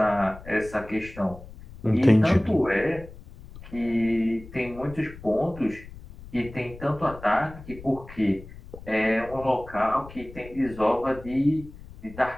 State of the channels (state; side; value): noise; left; rumble, 17 dB below the sound